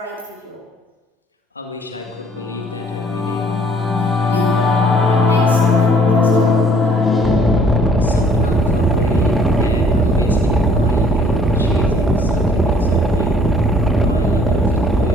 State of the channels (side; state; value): both; normal; correlation 0.59